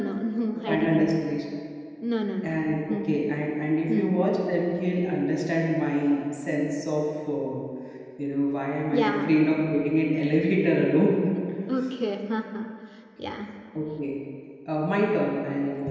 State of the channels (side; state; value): both; identical; correlation 1.00